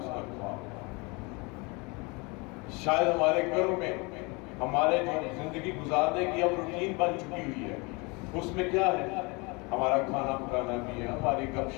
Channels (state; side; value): quieter; right; 28.0 dB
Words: کا گواہ۔ شاید ہمارے گھروں میں ہمارے جو زندگی گزارنے کی اب روٹین بن چکی ہوئی ہے، اس میں کیا ہے؟ ہمارا کھانا پکانا بھی ہے، ہماری گپ